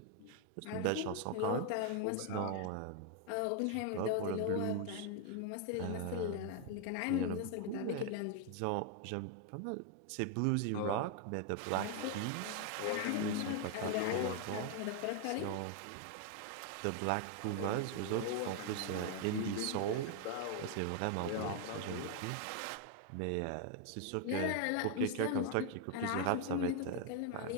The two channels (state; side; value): different; both; correlation 0.01